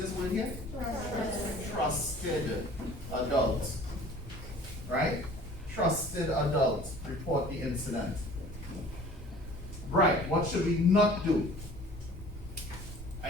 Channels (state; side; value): noise; right; rumble, 12 dB below the sound